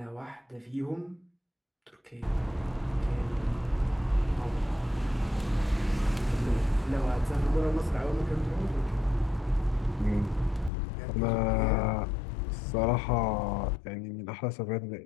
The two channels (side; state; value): right; drops out; at 10.7 s